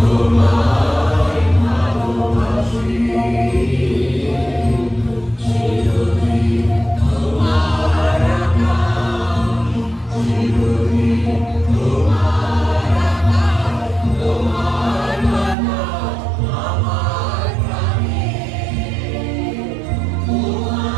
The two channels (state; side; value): drops out; left; at 15.6 s